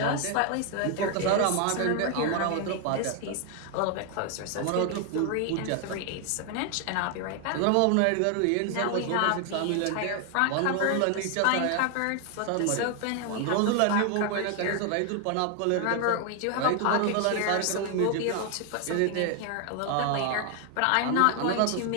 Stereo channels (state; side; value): different; both; correlation 0.00